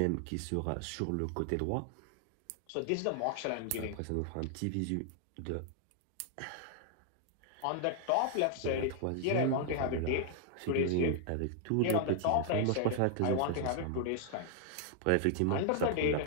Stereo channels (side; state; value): both; different; correlation 0.00